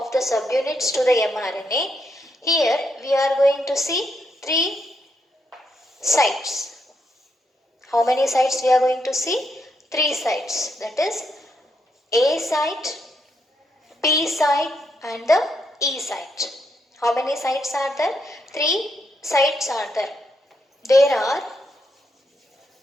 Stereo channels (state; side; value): normal; both; correlation 0.79